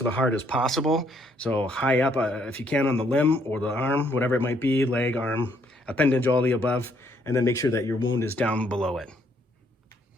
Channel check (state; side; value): normal; both; correlation 0.69